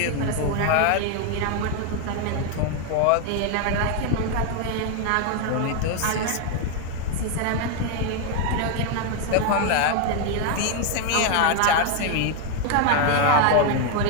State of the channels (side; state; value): both; different; correlation 0.01